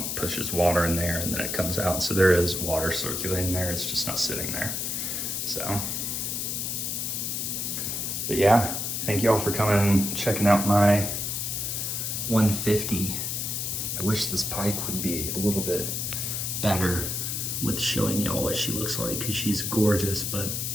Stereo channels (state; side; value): noise; left; hiss, 2 dB below the sound